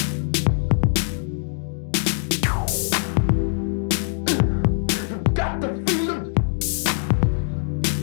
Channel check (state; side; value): silent; right; 64 dB below the other